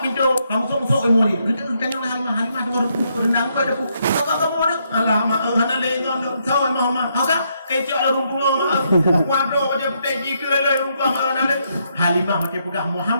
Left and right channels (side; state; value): both; inverted; correlation -0.76